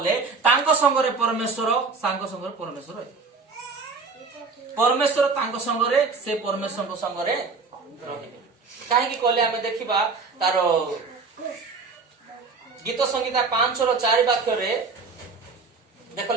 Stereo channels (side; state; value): left; quieter; 4.5 dB